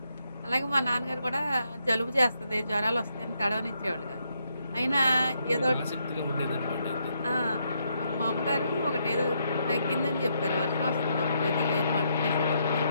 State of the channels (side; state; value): both; inverted; correlation -0.77